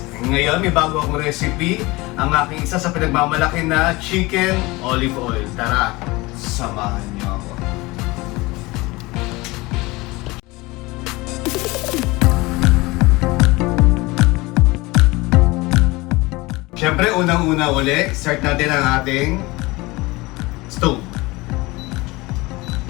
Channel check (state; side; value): quieter; right; 22.4 dB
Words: Ngayon may bago akong recipe, ang aking isa sa pinagmamalaki na chicken olive oil. Tara, samahan niyo ako. Siyempre, unang-una uli, start natin ang ating stove.